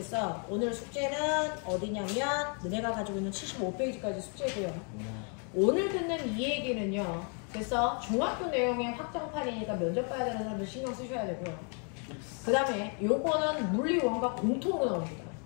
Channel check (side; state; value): right; quieter; 39.5 dB